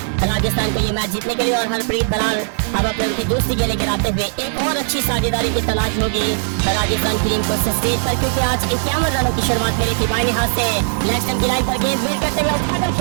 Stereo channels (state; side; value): silent; left; 67 dB below the other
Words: राजस्थान को ये मैच जीतने के लिए और हरप्रीत बरार अब अपने उनकी दूसरी गेंदें गिराते हुए एक और अच्छी साझेदारी की तलाश होगी राजस्थान की टीम को स्टेज पर, क्योंकि आज 51 रनों की शुरुआत करी थी। बाईं हाथ से लेग स्टंप की लाइन पर गेंद फेर करते हुए उठाकर